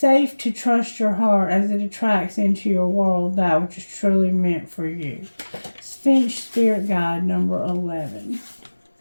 to trust your heart as it attracts into your world that which is truly meant for you. Finch Spirit Guide, number 11.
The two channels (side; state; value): both; inverted; correlation -1.00